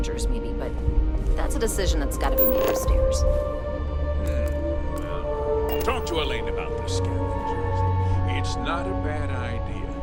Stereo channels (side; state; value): both; identical; correlation 1.00